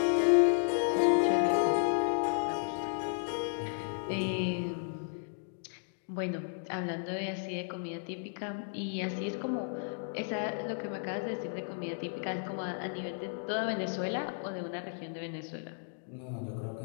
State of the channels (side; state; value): right; silent; digital silence